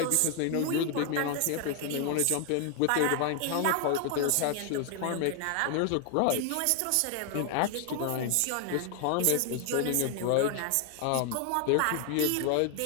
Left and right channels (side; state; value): both; different; correlation 0.00